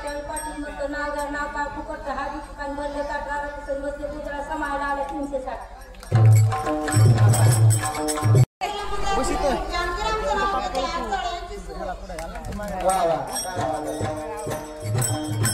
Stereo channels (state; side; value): identical; both; correlation 1.00